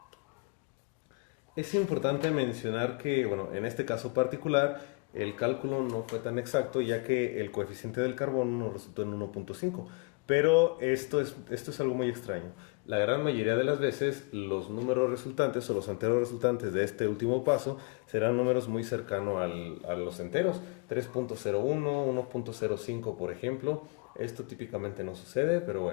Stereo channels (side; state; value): right; quieter; 32.1 dB